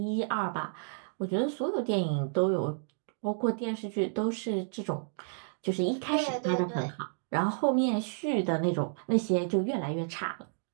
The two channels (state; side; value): silent; left; digital silence